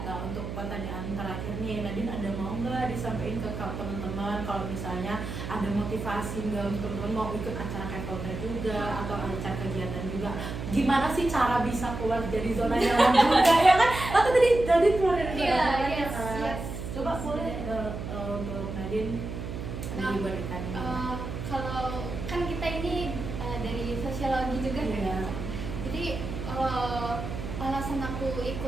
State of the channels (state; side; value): noise; right; hum, 6 dB below the sound